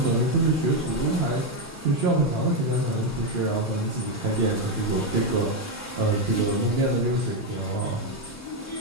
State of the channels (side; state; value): both; normal; correlation 0.06